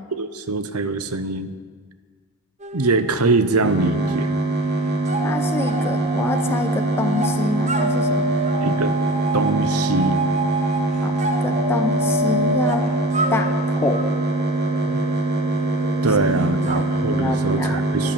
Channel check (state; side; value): normal; both; correlation 0.37